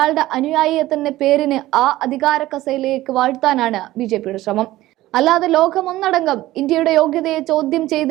അനുയായിയെ തന്നെ പേരിന് ആ അധികാര കസേരയിലേക്ക് വാഴ്ത്താനാണ് ബിജെപിയുടെ ശ്രമം. അല്ലാതെ ലോകമൊന്നടങ്കം ഇന്ത്യയുടെ യോഗ്യതയെ ചോദ്യം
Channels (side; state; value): left; quieter; 16.3 dB